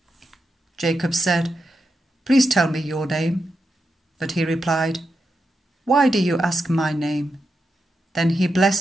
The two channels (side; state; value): both; normal; correlation 0.86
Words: Jacob said, "Please tell me your name." But he replied, "Why do you ask my name?" Then he